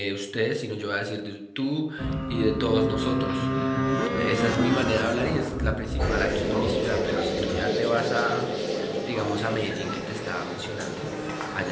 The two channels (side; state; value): both; identical; correlation 1.00